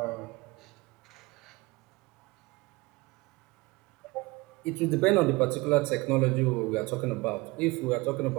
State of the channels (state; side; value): quieter; left; 23.0 dB